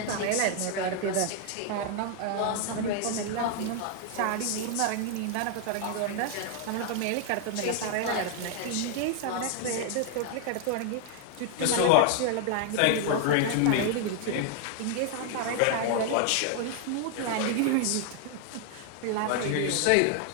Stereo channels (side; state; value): both; different; correlation 0.00